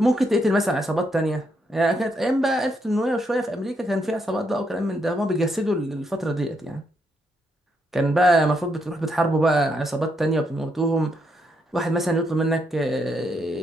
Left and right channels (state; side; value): normal; both; correlation 0.77